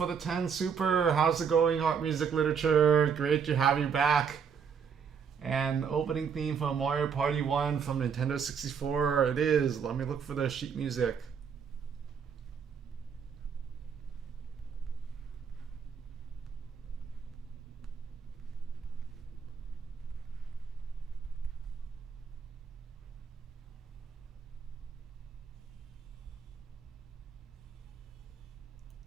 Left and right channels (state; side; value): quieter; left; 6.7 dB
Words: the 10 super. How's it going, Art Music Literature? Great to have you back. And opening theme from Mario Party 1 from Nintendo 64. It is. Let me look for the sheet music.